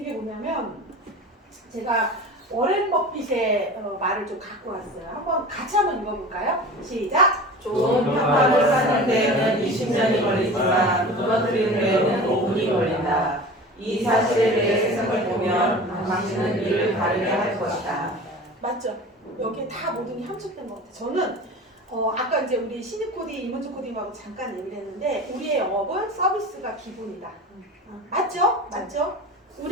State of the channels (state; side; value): normal; both; correlation 0.36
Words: 게 뭐냐면 제가 워렌 버핏의 말을 좀 갖고 왔어요. 같이 한번 읽어볼까요? 시작! 좋은 평판을 쌓는 데에는 20년이 걸리지만 무너뜨리는 데에는 5분이 걸린다. 이 사실에 대해 세상을 보면 당신은 이를 다르게 할 것이다. 맞죠? 여기에 다 모든 게 함축된 것 같아요. 저는 아까 이제 우리 신입 코디, 이문주 코디하고 잠깐 얘기를 했는데 우리의 영업은 서비스가 기본이다. 맞죠? 맞죠?